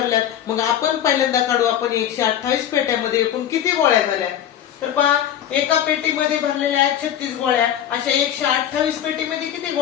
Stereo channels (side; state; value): right; quieter; 10.4 dB